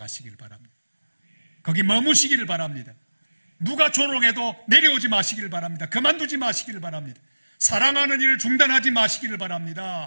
바랍니다. 거기 머무시기를 바랍니다. 누가 조롱해도 내려오지 마시기를 바랍니다. 그만두지 마시기를 바랍니다. 사랑하는 일을 중단하지 마시기를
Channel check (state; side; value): inverted; both; correlation -1.00